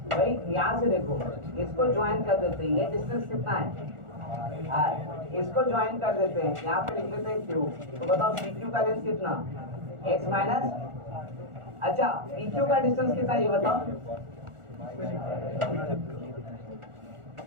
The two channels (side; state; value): left; late; 1.4 ms